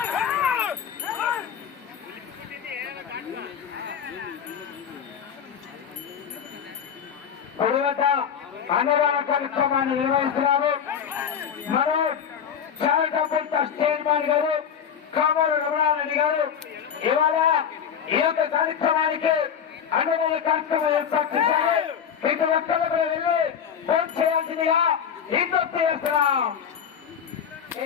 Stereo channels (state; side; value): quieter; right; 7.9 dB